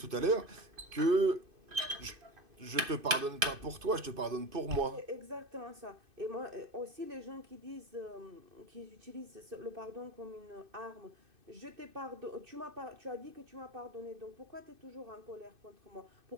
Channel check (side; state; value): left; late; 2.5 ms